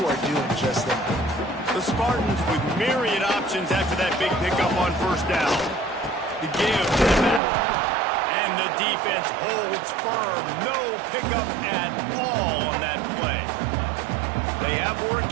are doing just that. The Spartans with myriad options after that big pickup on first down. The give to the back. And the defense holds firm. No pickup at all on that play. They have work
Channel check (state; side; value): drops out; left; at 7.4 s